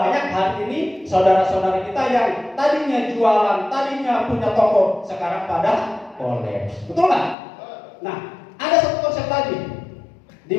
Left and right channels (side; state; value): right; drops out; at 7.4 s